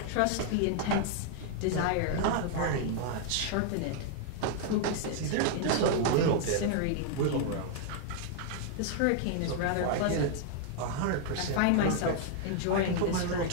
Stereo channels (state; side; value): different; both; correlation 0.00